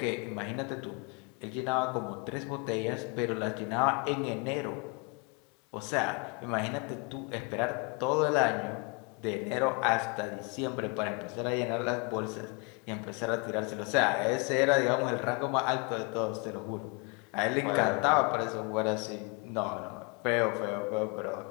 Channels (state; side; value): quieter; right; 31.2 dB